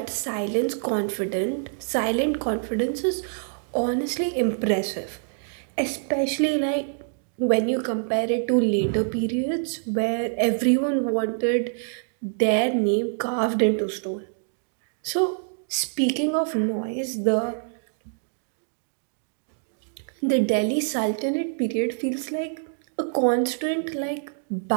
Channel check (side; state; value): left; silent; digital silence